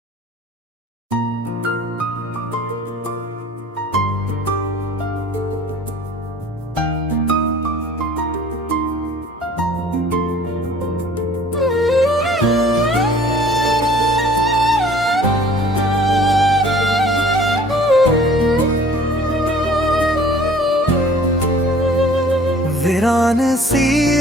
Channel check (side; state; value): both; normal; correlation 0.51